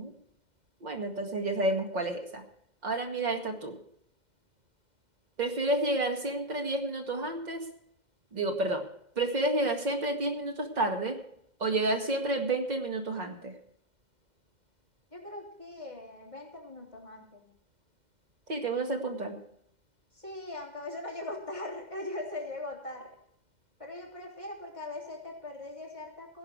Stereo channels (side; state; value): left; late; 2.1 ms